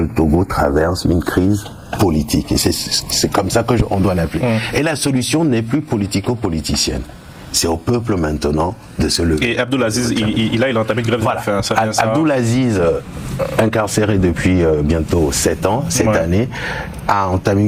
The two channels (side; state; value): both; identical; correlation 1.00